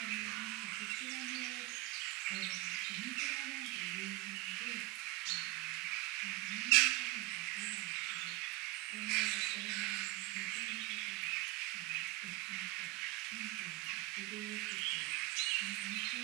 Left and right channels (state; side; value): quieter; left; 18.6 dB